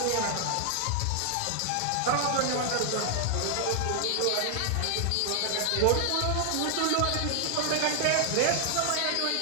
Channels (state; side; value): different; both; correlation 0.00